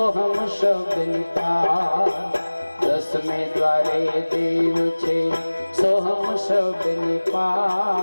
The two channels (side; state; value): both; inverted; correlation -1.00